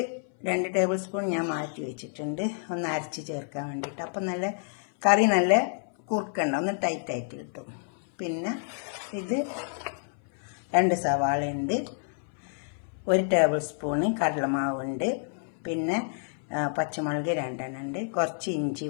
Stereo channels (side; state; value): right; silent; 57 dB below the other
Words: 2 ടേബിൾ സ്പൂൺ ഞാൻ മാറ്റി വെച്ചിട്ടുണ്ട്, ഒന്ന് അരച്ച് ചേർക്കാൻ വേണ്ടിയിട്ട്. അപ്പം നല്ല കറി നല്ല കുറുക്കണ്ട, ഒന്ന് ടൈറ്റായിട്ട് കിട്ടും. പിന്നെ ഇത് 2 സവാളയുണ്ട്, 1 ടേബിൾ സ്പൂണ് കടലമാവുണ്ട്, പിന്നെ പച്ചമുളക് 2 എണ്ണം ഉണ്ട്, കുറച്ച് ഇഞ്ചി